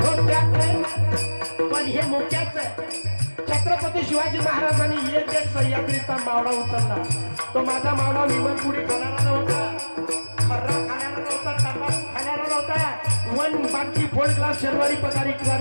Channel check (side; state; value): both; inverted; correlation -1.00